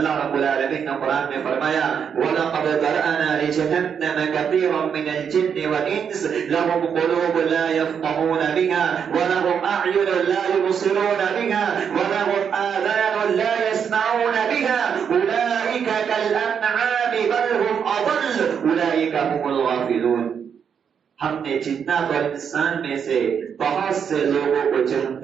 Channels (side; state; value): left; quieter; 7.4 dB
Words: رب العالمین نے قرآن میں فرمایا وَلَقَدْ ذَرَأْنَا لِجَهَنَّمَ كَثِيرًا مِنَ الْجِنِّ وَالْإِنسِ لَهُمْ قُلُوبٌ لَا يَفْقَهُونَ بِهَا وَلَهُمْ أَعْيُنٌ لَا يُبْصِرُونَ بِهَا وَلَهُمْ آذَانٌ لَا يَسْمَعُونَ بِهَا أُولَئِكَ كَالْأَنْعَامِ بَلْ هُمْ أَضَلُّ أُولَئِكَ هُمُ الْغَافِلُونَ. ہم نے جنات اور انسان میں سے بہت سے لوگوں کو